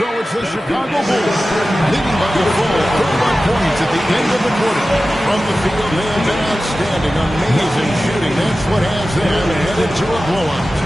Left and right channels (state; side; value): normal; both; correlation 0.95